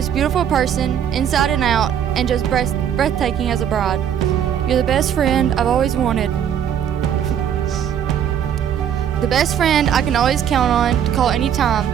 beautiful person, inside and out, and just breathtaking as a bride. You're the best friend I've always wanted. The best friend I can always count on to call anytime,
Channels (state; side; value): quieter; left; 9.1 dB